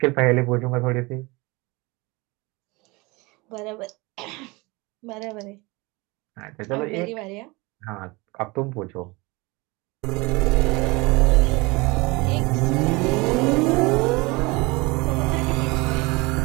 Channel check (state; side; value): quieter; left; 24.8 dB